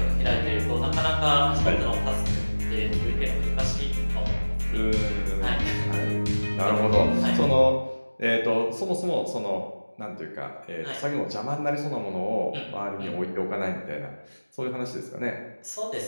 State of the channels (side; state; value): both; inverted; correlation -1.00